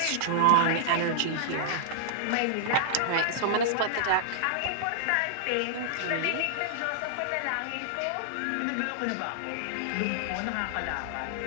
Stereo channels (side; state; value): both; different; correlation -0.01